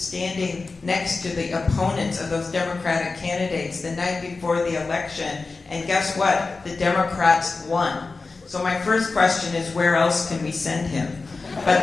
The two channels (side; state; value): right; quieter; 3.9 dB